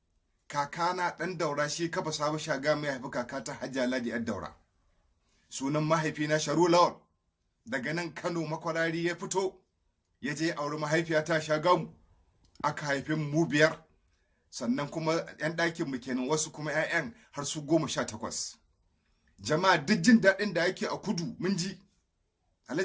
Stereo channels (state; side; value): identical; both; correlation 1.00